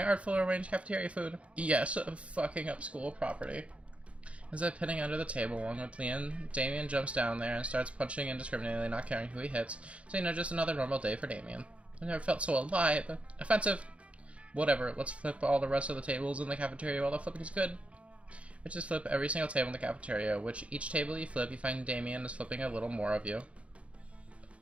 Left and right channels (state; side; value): late; left; 0.062 ms